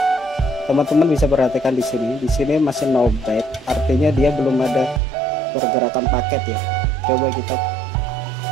teman-teman bisa perhatikan di sini masih no byte, artinya dia belum ada pergerakan paket ya. Coba kita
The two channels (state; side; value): drops out; left; at 5.0 s